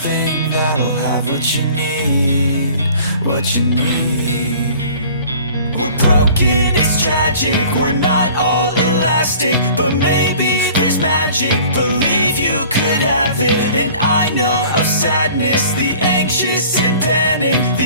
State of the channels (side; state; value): both; inverted; correlation -0.48